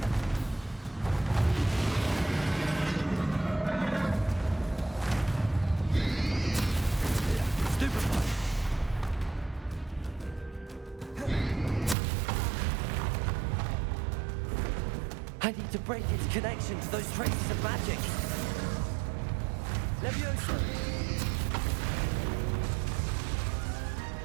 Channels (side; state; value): left; drops out; at 12.0 s